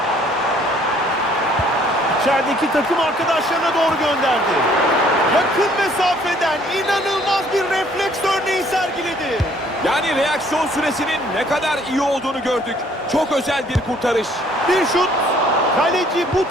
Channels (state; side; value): normal; both; correlation 0.60